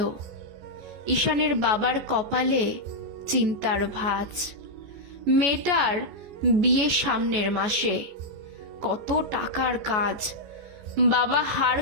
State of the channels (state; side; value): late; left; 14 ms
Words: ঈশানের বাবার কপালে চিন্তার ভাঁজ। মেয়েটার বিয়ে সামনের মাসে, কত টাকার কাজ। বাবা হাড়